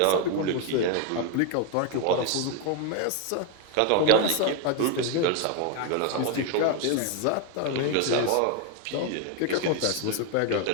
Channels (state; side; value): different; both; correlation 0.01